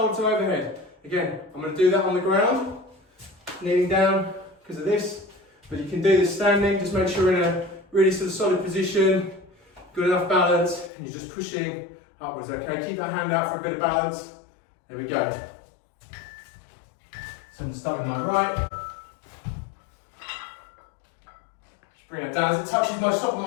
to overhead. Again, I'm going to do that on the ground, kneeling down because of this, but you can do this standing. Just make sure you're in a really sort of solid position, good enough balance, and you're just pushing upwards, okay? Keep that hand out for a bit of balance. There we go. So I'm going to start with my right. Bring it down. As it touches my top of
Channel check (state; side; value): drops out; right; at 10.9 s